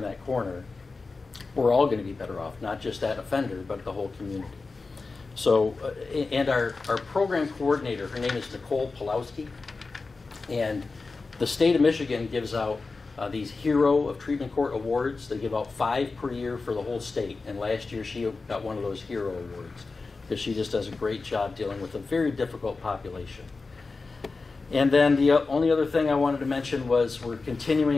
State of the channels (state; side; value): quieter; right; 4.0 dB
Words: that corner, we're all going to be better off, not just that offender, but the whole community. So, and our program coordinator, her name is Nicole Pulowski, and the state of Michigan gives out these Hero of Treatment Court awards. They give out 5 per year for the whole state, and last year she got one of those Hero awards because she just does a great job dealing with a very difficult population. And then the only other thing I wanted to mention was we're